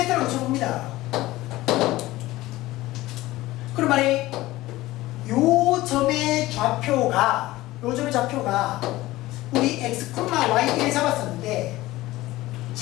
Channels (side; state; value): right; quieter; 17.7 dB